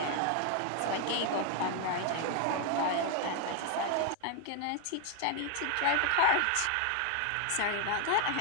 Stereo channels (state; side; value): different; both; correlation 0.00